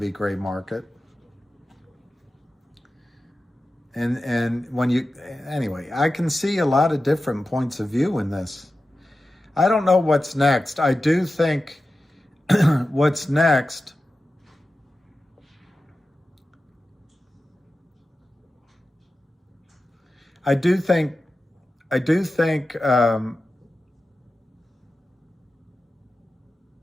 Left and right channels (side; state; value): both; normal; correlation 0.93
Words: gray market. And when anyway, I can see a lot of different points of view in this. I don't know what's next. I do think what's next, I do think